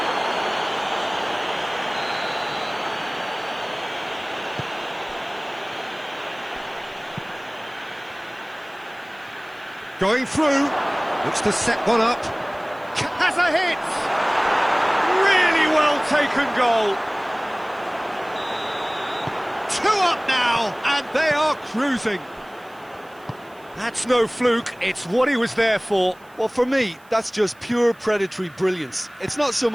Going through, looks to set one up, has a hit! Really well taken goal. 2 up now, and they are cruising. That's no fluke, it's what he was there for. Well, for me, that's just pure predatory brilliance. It's not so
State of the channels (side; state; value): right; noise; hiss, 29 dB below the sound